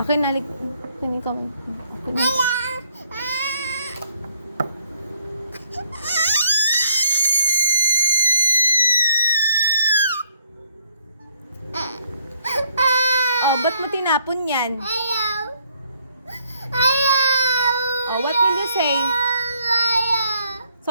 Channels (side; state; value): both; inverted; correlation -0.67